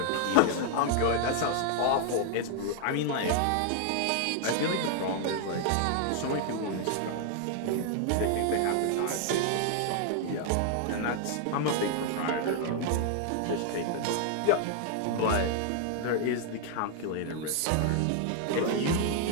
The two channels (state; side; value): different; both; correlation 0.00